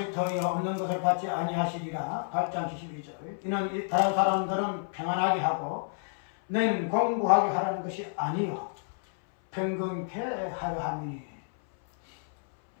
터이요 없는 것을 받지 아니하시리라. 8장 72절. 이는 다른 사람들은 평안하게 하고 너희는 공부하게 하라는 것이 아니요 평균케 하려 함이니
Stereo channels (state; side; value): silent; right; 58 dB below the other